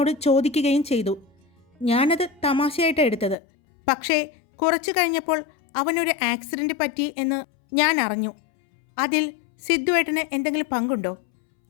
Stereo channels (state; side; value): drops out; right; at 3.4 s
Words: ചോദിക്കുകയും ചെയ്തു. ഞാനത് തമാശയായിട്ടാണ് എടുത്തത്. പക്ഷേ കുറച്ചു കഴിഞ്ഞപ്പോൾ അവനൊരു ആക്സിഡൻറ്റ് പറ്റി എന്ന് ഞാൻ അറിഞ്ഞു. അതിൽ സിദ്ധുവേട്ടന് എന്തെങ്കിലും പങ്കുണ്ടോ?